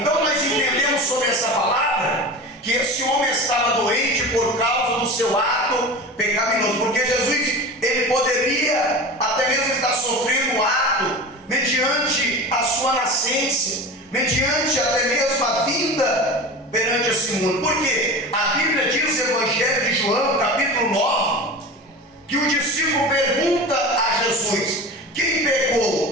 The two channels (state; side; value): normal; both; correlation 0.31